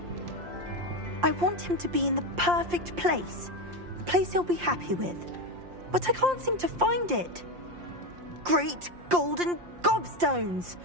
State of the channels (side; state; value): left; late; 5.7 ms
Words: I want him to be in the perfect place. A place he'll be happy with. But I can't seem to find it. Great golden gobstones!